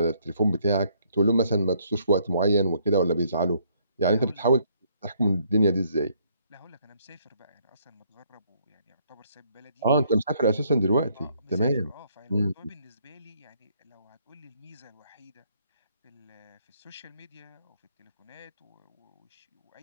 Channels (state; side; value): inverted; both; correlation -0.67